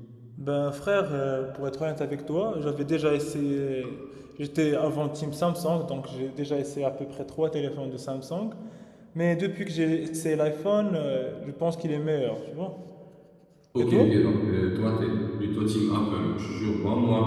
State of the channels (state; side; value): identical; both; correlation 1.00